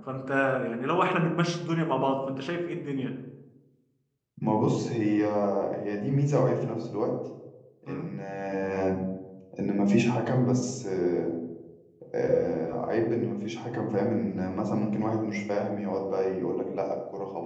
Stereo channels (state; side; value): identical; both; correlation 1.00